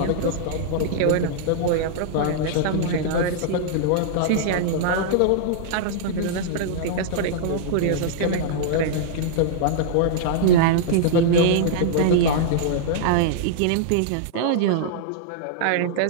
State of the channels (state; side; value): different; both; correlation -0.02